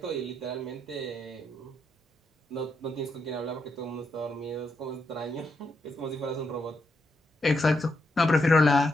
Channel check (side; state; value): both; normal; correlation 0.80